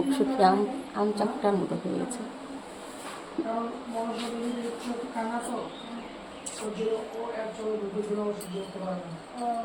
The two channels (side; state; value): both; identical; correlation 1.00